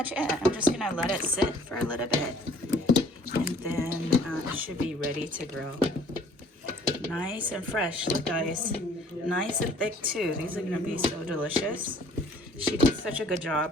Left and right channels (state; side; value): normal; both; correlation 0.55